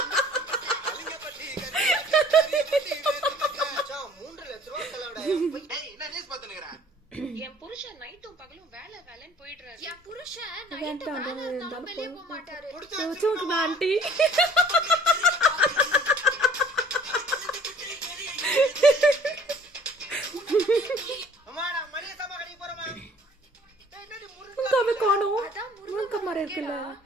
என் புருஷன் நைட்டும் பகலும் வேலை வேலைன்னு போயிடுறாரு. என் புருஷன் நைட்டு வேலை இருந்தாலும் வெளியே போக மாட்டாரு. ஆண்டி காணும் முருங்க மரம் இருக்குல்ல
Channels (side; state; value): both; normal; correlation 0.53